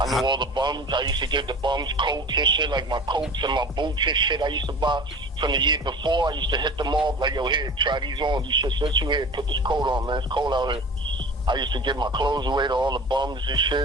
knew all the bums. I used to give the bums coats and shit, like my coats and my boots and shit I used to buy from the year before. I used to hit them off, like, yo, here, try these on. You should sit you here, put this coat on, man. It's cold out here. I used to give my clothes away to all the bums and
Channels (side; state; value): both; normal; correlation 0.39